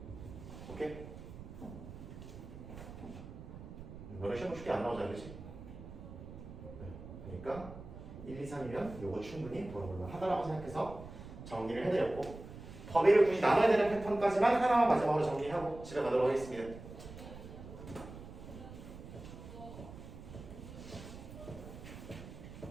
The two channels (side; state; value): right; noise; rumble, 13 dB below the sound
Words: 오케이? 너네 시험 쉽게 안 나오잖아, 그치? 그러니까 1, 2, 3이면 요거 충분히 물어볼 만하다라고 생각해서 정리를 해드렸고 범위를 굳이 나눠야 되는 패턴까지만 하나만 마지막으로 정리하고 집에 가도록 하겠습니다.